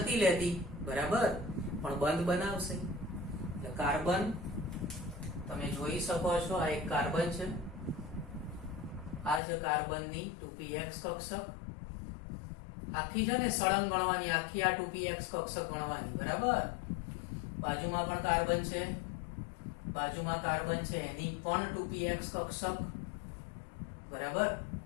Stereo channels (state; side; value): drops out; right; at 9.4 s